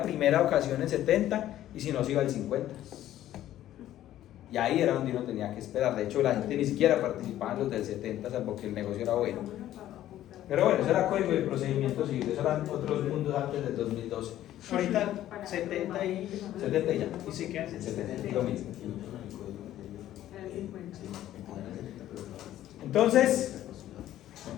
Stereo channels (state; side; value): quieter; right; 13.0 dB